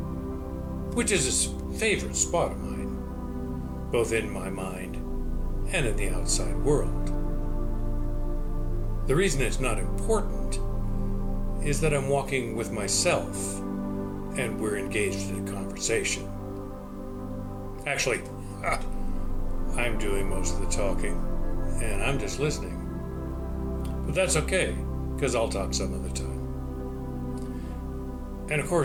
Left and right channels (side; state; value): both; identical; correlation 1.00